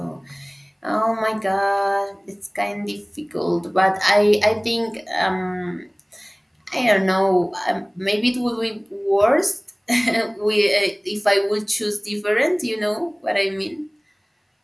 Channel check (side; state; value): both; identical; correlation 1.00